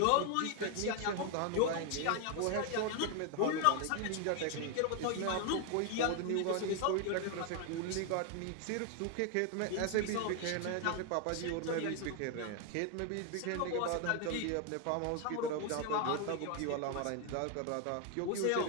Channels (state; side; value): different; both; correlation 0.01